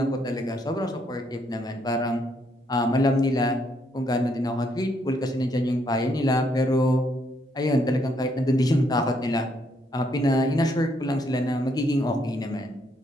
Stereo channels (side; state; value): both; normal; correlation 0.72